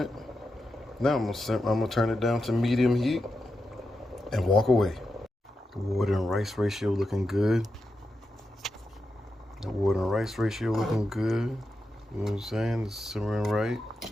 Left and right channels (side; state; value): both; normal; correlation 0.88